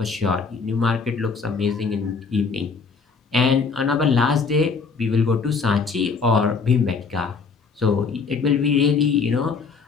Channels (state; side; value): quieter; right; 5.1 dB